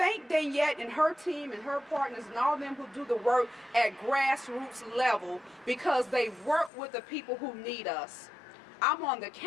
Danielle and her team and her partners and all of them who do the work at grassroots level because they work with the people who need us. I'm on the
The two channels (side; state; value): right; drops out; at 6.7 s